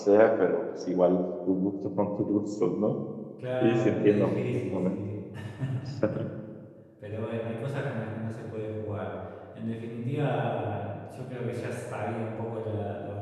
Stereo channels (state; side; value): identical; both; correlation 1.00